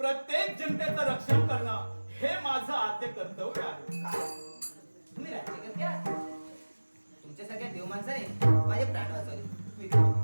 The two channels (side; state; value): both; inverted; correlation -1.00